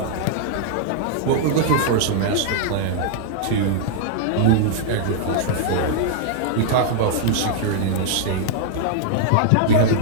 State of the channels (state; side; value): different; both; correlation -0.01